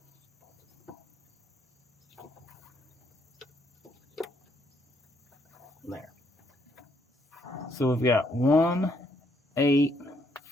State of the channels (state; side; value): normal; both; correlation 0.71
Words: There. So we've got 1, 8,